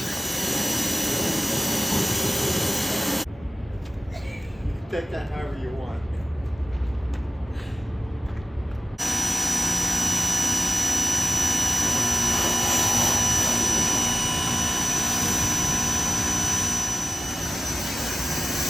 Take that however you want.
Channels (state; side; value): normal; both; correlation 0.95